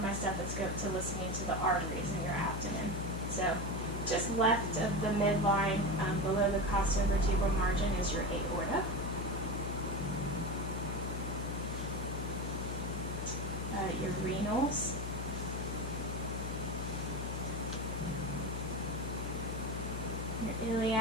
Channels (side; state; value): left; noise; hum, 4 dB below the sound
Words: my stethoscope to listening to the arteries in your abdomen. So, just left of the midline, below the costovertebral margin, is your aorta. Your renals. Your